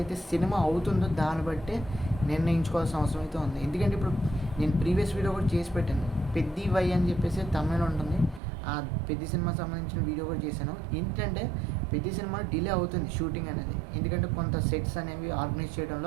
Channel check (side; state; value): left; drops out; at 8.4 s